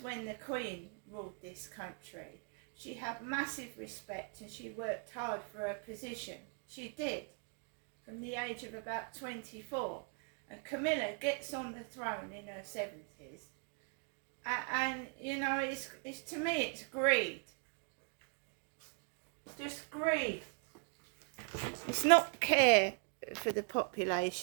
when the Queen ruled this country. She had massive respect and she worked hard for her position. She did, from the age of about 24. And Camilla gets on the throne in her 70s. And you know, it's to me, it's greed. Just greed. It's not care for the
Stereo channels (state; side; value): quieter; left; 39.4 dB